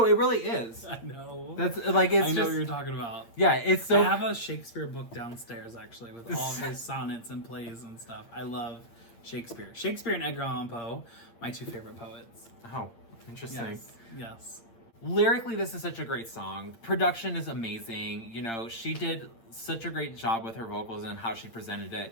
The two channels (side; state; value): right; late; 8.7 ms